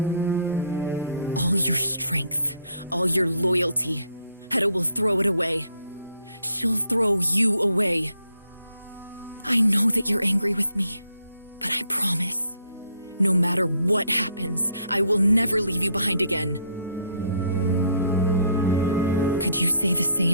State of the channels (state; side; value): inverted; both; correlation -0.68